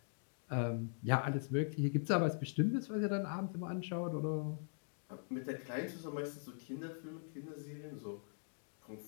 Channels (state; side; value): silent; right; digital silence